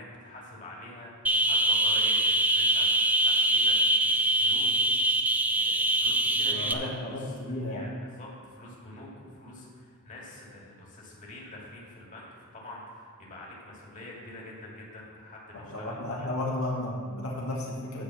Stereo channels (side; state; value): both; normal; correlation -0.01